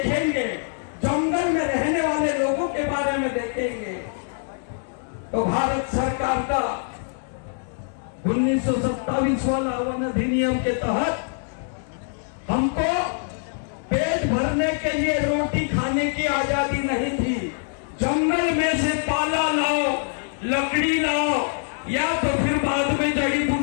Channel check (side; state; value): right; silent; 63 dB below the other